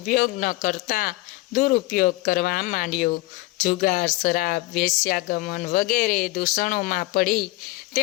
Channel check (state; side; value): quieter; right; 19.4 dB